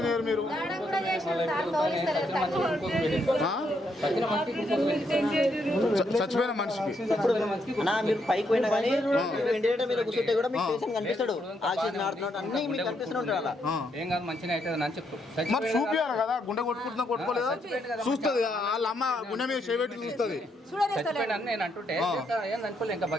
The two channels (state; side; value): normal; both; correlation 0.77